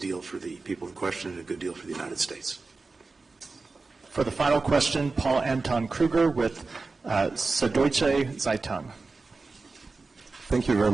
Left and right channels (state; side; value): quieter; left; 3.9 dB